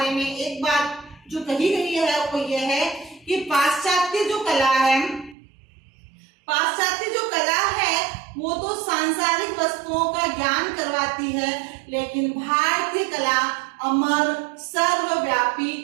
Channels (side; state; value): left; drops out; at 5.4 s